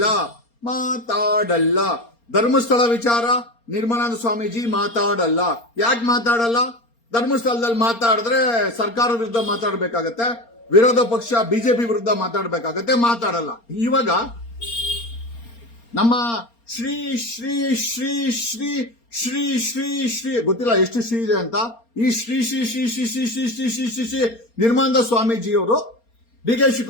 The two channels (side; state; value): right; late; 4.3 ms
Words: ಧರ್ಮಸ್ಥಳ ವಿಚಾರ ನಿರ್ಮಲಾನಂದ ಸ್ವಾಮೀಜಿ ಮಾತಾಡಲ್ಲ. ಯಾಕೆ ಮಾತಾಡಲ್ಲ? ಧರ್ಮಸ್ಥಳದಲ್ಲಿ ಮಾತಾಡಿದ್ರೆ ಸರ್ಕಾರದ ವಿರುದ್ಧ ಮಾತಾಡಬೇಕಾಗತ್ತೆ, ವಿರೋಧ ಪಕ್ಷ ಬಿಜೆಪಿ ವಿರುದ್ಧ ಮಾತಾಡಲ್ಲ. ಇವಾಗ ನಮ್ಮ ಶ್ರೀ ಶ್ರೀ ಶ್ರೀ ಶ್ರೀ ಶ್ರೀ ಶ್ರೀ ಶ್ರೀ ಗೊತ್ತಿಲ್ಲ ಎಷ್ಟು ಶ್ರೀ ಇದೆ ಅಂತ, ಈ ಶ್ರೀ ಶ್ರೀ ಶ್ರೀ ಶ್ರೀ ಶ್ರೀ ಶ್ರೀ ಶ್ರೀ ಶ್ರೀ ಶ್ರೀ ಶ್ರೀ ನಿರ್ಮಲಾನಂದ ಸ್ವಾಮೀಜಿಯವರು ಡಿ.ಕೆ.